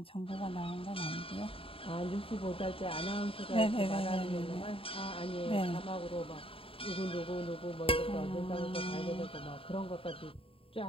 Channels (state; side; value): late; right; 0.27 ms